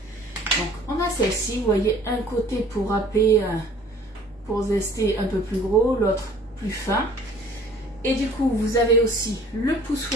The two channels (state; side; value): normal; both; correlation 0.52